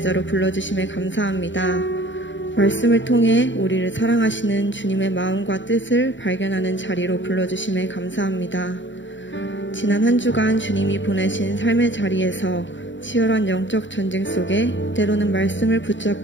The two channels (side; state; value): right; late; 0.54 ms